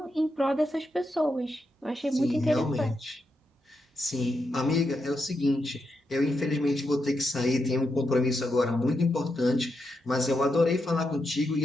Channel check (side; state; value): both; normal; correlation 0.84